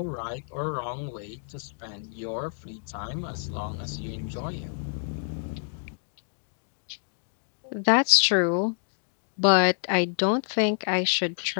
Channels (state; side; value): silent; right; digital silence